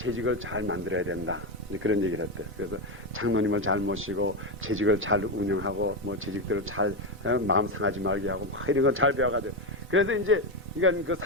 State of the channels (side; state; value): both; normal; correlation 0.10